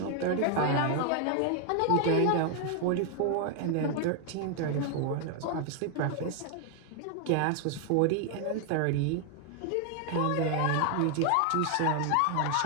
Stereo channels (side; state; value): both; different; correlation 0.00